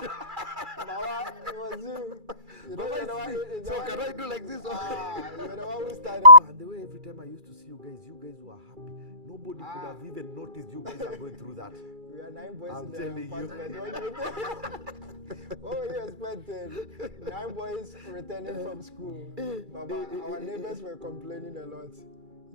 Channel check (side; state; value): left; late; 2.3 ms